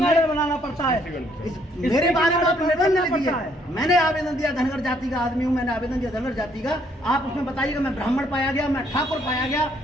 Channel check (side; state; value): both; normal; correlation 0.67